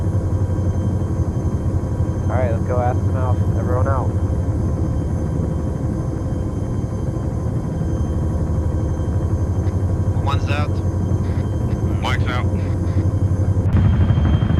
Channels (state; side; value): identical; both; correlation 1.00